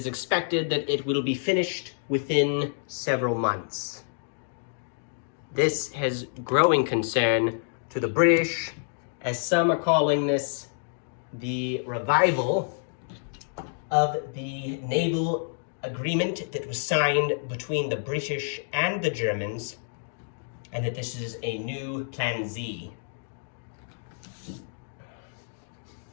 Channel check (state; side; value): silent; right; digital silence